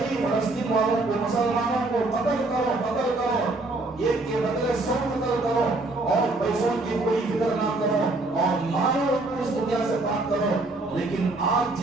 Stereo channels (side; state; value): left; quieter; 3.0 dB